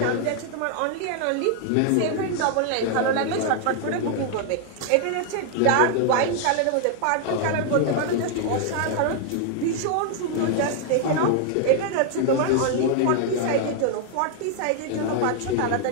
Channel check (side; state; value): both; different; correlation 0.00